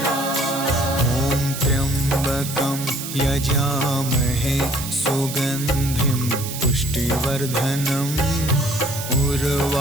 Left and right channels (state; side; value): noise; right; hiss, 8 dB below the sound